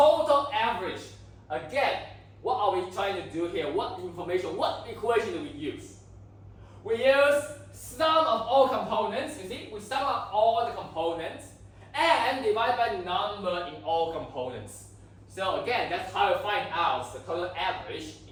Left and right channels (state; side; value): identical; both; correlation 1.00